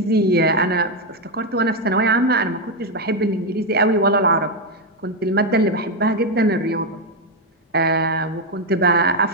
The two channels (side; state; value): both; normal; correlation 0.05